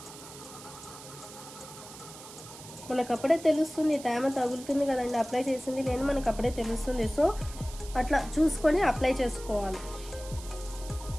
మనకు అప్పుడే తెలుస్తుంది, తేమ తగులుతుంది కదండి అప్లై చేసింది లేదు, మనకు అప్పుడే తెలుస్తుంది. సో అట్లా చూసుకొని అప్లై చేసుకోవాలి.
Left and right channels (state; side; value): noise; right; hiss, 15 dB below the sound